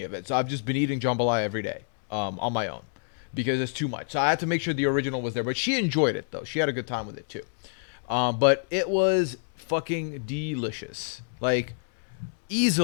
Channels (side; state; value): right; silent; digital silence